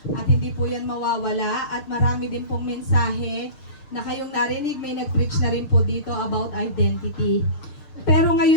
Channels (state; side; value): late; right; 6.5 ms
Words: at hindi po yan mawawala at marami din pong mensahe na kayong narinig, may nag-preach na rin po dito about identity. Pero